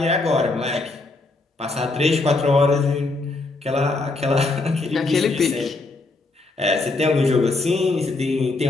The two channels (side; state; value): right; quieter; 3.4 dB